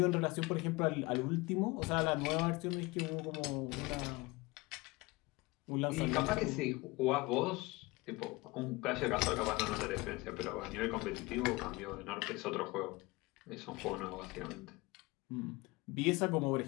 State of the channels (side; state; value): right; quieter; 23.2 dB